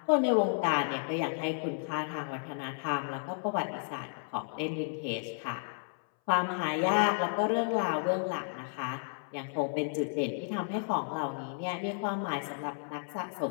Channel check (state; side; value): silent; right; 56 dB below the other